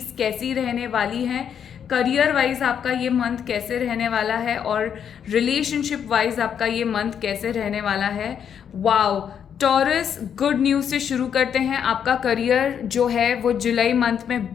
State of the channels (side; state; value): right; quieter; 8.2 dB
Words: कैसी रहने वाली हैं। करियर वाइज आपका ये मंथ कैसे रहने वाला है और रिलेशनशिप वाइज आपका ये मंथ कैसे रहने वाला है। वाओ, टॉरस, गुड न्यूज़ से शुरू करते हैं। आपका करियर जो है वो जुलाई मंथ में